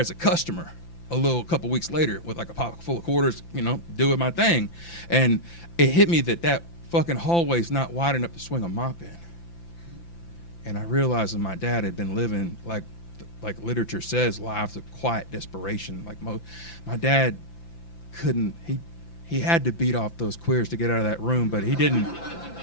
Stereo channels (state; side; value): late; right; 5.9 ms